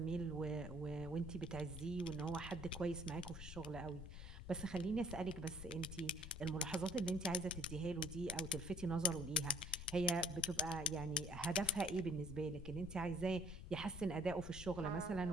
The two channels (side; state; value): left; noise; rumble, 10 dB below the sound